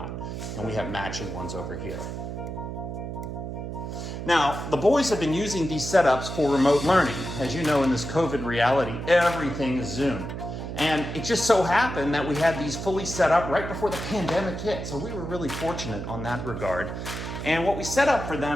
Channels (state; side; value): noise; right; hum, 6 dB below the sound